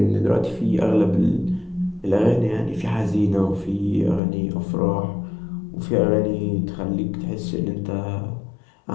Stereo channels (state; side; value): drops out; right; at 4.2 s